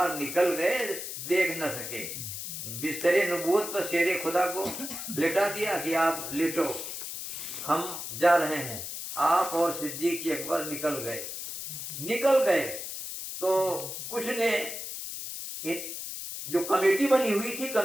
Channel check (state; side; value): noise; left; hiss, 7 dB below the sound